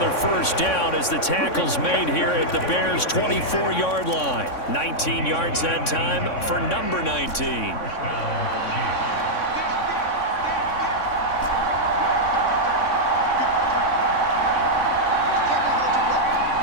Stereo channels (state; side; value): late; right; 3.6 ms